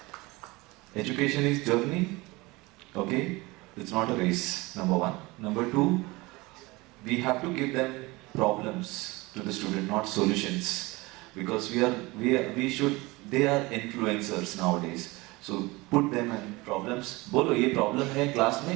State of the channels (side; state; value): left; quieter; 22.8 dB